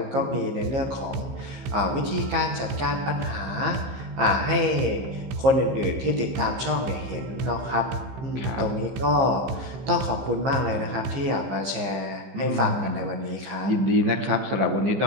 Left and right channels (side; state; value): left; late; 15 ms